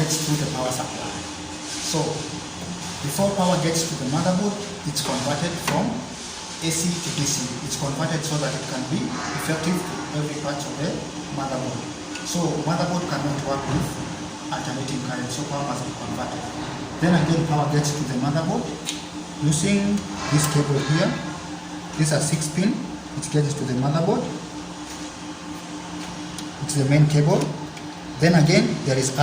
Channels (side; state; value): both; identical; correlation 1.00